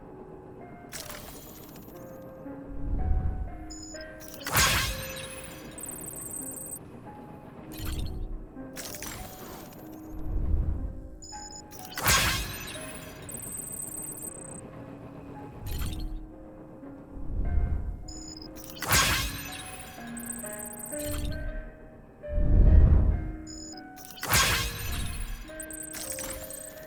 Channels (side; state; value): both; identical; correlation 1.00